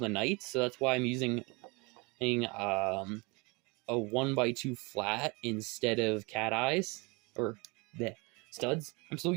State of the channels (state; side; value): quieter; left; 27.6 dB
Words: knights, so that's why I'm using a 1x2 flat instead of cat eyes, or the studs. I'm still